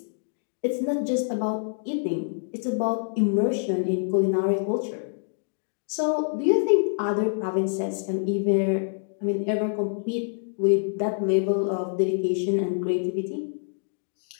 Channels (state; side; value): silent; right; digital silence